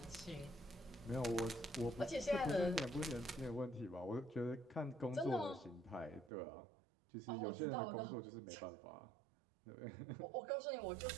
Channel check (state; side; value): drops out; left; at 6.3 s